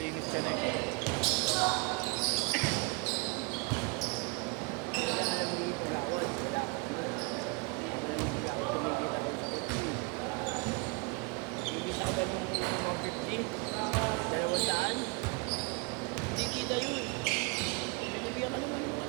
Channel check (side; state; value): left; quieter; 30.7 dB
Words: ka na eh. Wala ka lang hindi pagawad. Wala ako. Wala ako tumigil ako sa kutsi. Igisa ko ba nung 150? 200? Hindi kita yun. Binibigyan ka naman ng mga